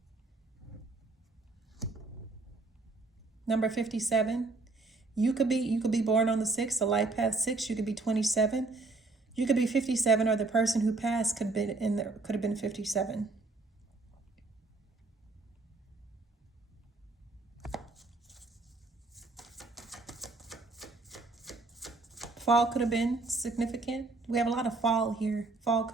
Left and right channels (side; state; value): left; quieter; 3.4 dB